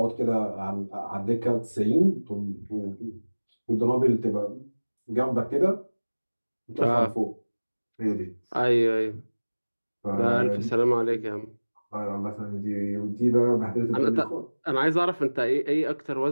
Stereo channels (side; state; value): both; inverted; correlation -1.00